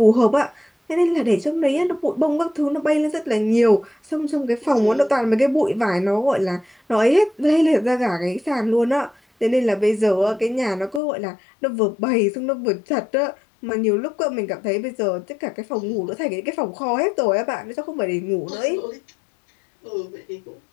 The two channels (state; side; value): drops out; right; at 11.0 s